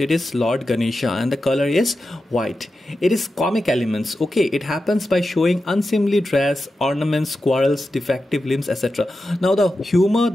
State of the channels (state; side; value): normal; both; correlation 0.91